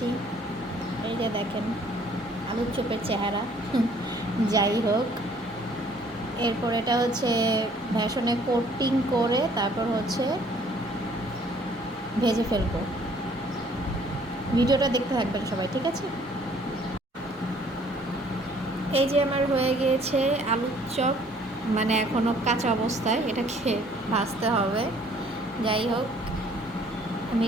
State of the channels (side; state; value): both; normal; correlation 0.59